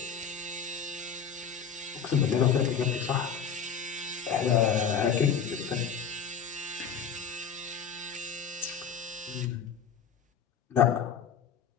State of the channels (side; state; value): right; quieter; 6.9 dB